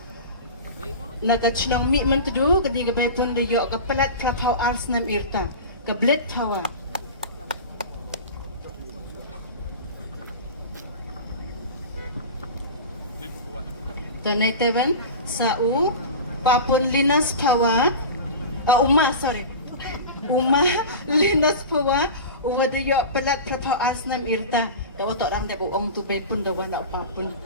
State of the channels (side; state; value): both; inverted; correlation -0.30